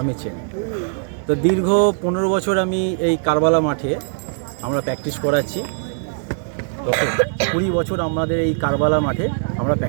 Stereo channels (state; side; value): silent; left; digital silence